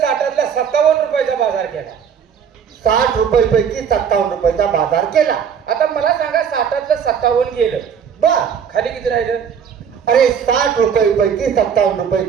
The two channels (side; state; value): left; quieter; 7.4 dB